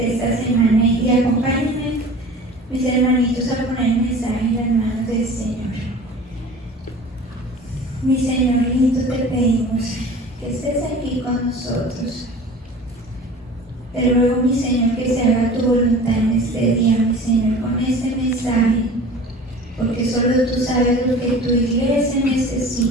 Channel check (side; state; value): both; normal; correlation 0.41